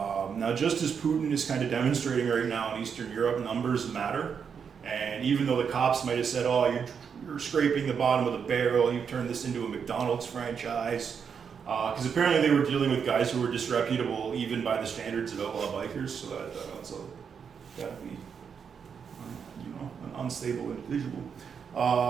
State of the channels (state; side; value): quieter; left; 6.7 dB